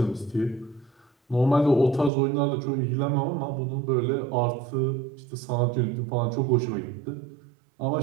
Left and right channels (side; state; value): left; drops out; at 2.1 s